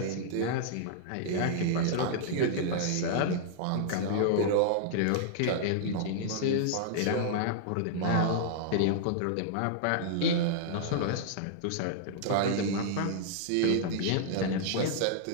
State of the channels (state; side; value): different; both; correlation -0.01